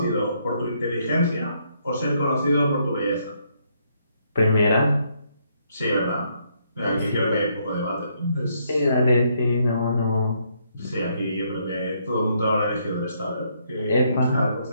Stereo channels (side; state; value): both; inverted; correlation -0.72